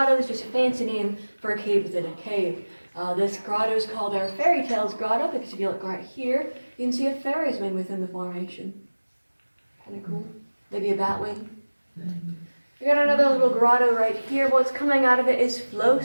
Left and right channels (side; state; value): both; inverted; correlation -1.00